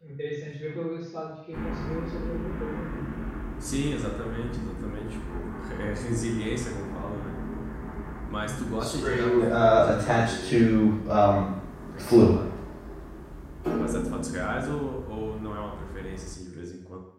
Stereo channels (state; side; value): identical; both; correlation 1.00